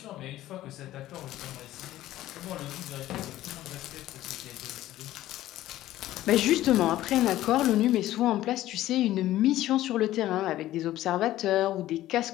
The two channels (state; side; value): quieter; right; 14.6 dB